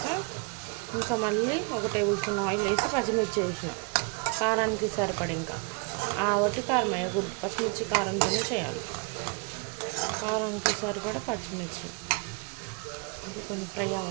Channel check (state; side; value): quieter; left; 32.3 dB